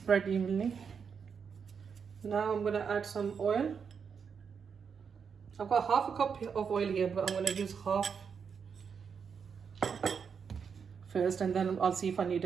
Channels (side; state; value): left; quieter; 6.4 dB